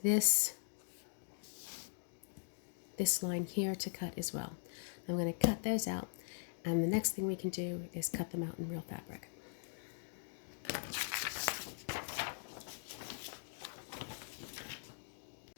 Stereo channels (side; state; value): right; silent; digital silence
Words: this line here to cut as well. I'm going to cut those out, and the next thing we can do is cut them out in real fabric.